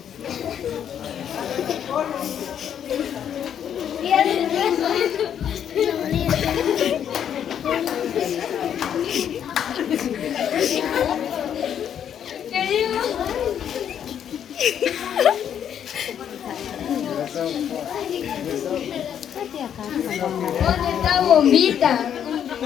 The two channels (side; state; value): right; quieter; 9.1 dB